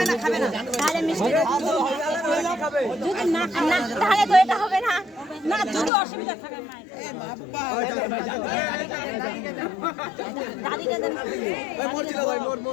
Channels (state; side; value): drops out; right; at 5.9 s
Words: না তাহলে মিষ্টি যদি না তাহলে তো এটা হবে না না যদি অসুবিধা থাকে দাদিকে দেন ভাই মোর ছিল ভাই